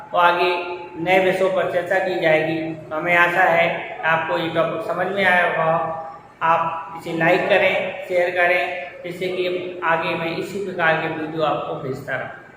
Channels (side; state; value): both; identical; correlation 1.00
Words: और आगे नए विषयों पर चर्चा की जाएगी। तो हमें आशा है आपको ये टॉपिक समझ में आया होगा। आप इसे लाइक करें, शेयर करें, जिससे कि आगे मैं इसी प्रकार के वीडियो आपको भेजता रहूँ।